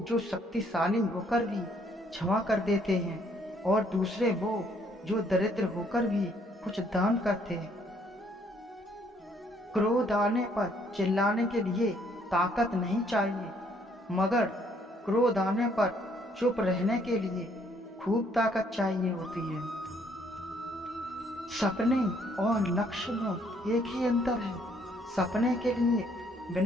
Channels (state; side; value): normal; both; correlation 0.66